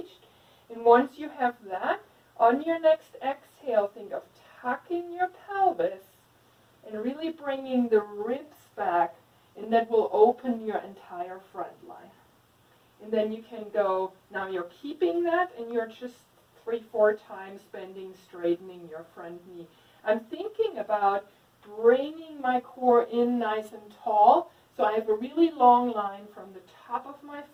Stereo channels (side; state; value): both; identical; correlation 1.00